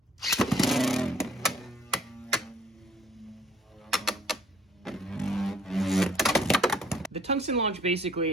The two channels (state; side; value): normal; both; correlation 0.57